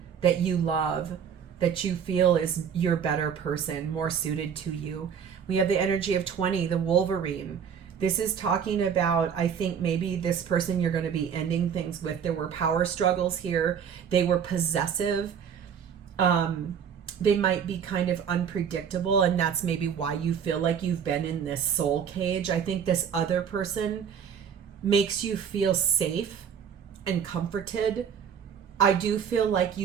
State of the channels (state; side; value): quieter; left; 7.7 dB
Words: that you love, that you feel is your better person, more suited to you. We have the energy of 20, the Wolverine. This is talking about, I think, maybe this person you're going to be ending things with. There were power struggles here. They were possessive. They might be kind of unpredictable, and that's maybe why you feel like you've been in this soul cage. I think this other person makes you feel safe and comforted. I do feel like